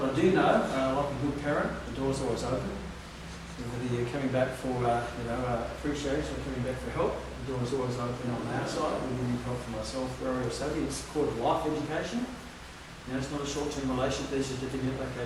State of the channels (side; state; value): both; identical; correlation 1.00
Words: I do know, like a good parent, the door's always open. Whether you're coming back for appreciation or coming back for help, the door's always open on our side. Whether you need help from myself, Rory or Savvy, it's called life education. It's not a short-term relationship. There's a certificate,